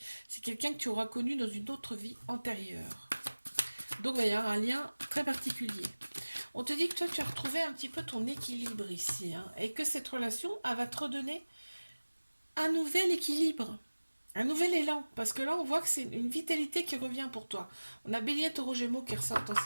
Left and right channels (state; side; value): inverted; both; correlation -1.00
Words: C'est quelqu'un que tu auras connu dans une autre vie antérieure. Donc, il va y avoir un lien très particulier. On te dit que toi, tu as retrouvé un petit peu ton équilibre ici, hein, et que cette relation, elle va te redonner un nouvel équilibre, un nouvel élan. Parce que là, on voit que c'est une vitalité qui revient pour toi. On a Bélier, Taureau, Gémeaux qui ressortent en